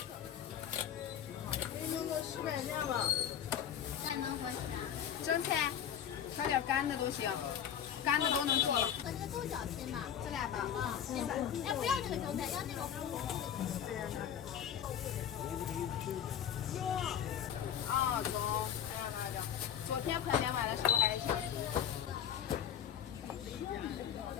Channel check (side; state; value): right; quieter; 9.2 dB